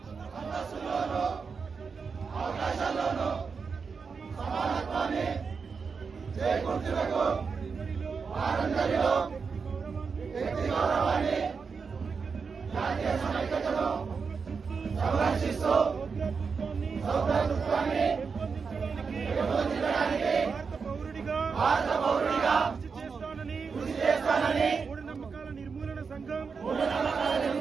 అంతస్తులోను అవకాశాల్లోను సమానత్వాన్ని చేకూర్చుటకు వారందరిలో వ్యక్తి గౌరవాన్ని జాతీయ సమైక్యతను సంరక్షిస్తూ సౌభ్రాతృత్వాన్ని పెంపొందించడానికి భారత పౌరుడిగా కృషి చేస్తానని మూఢనమ్మకాల నిర్మూలన సంఘం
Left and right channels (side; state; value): left; quieter; 5.4 dB